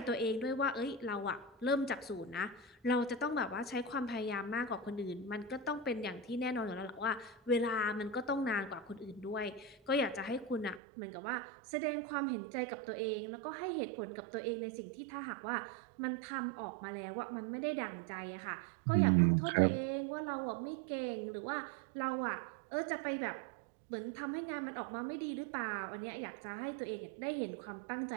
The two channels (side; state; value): left; drops out; at 10.8 s